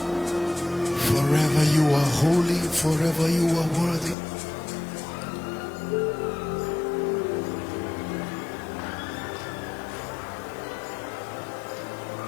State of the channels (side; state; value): right; drops out; at 4.2 s